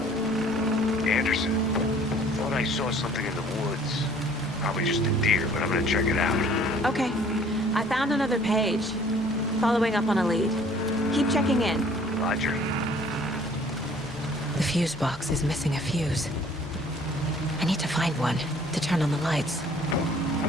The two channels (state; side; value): normal; both; correlation 0.55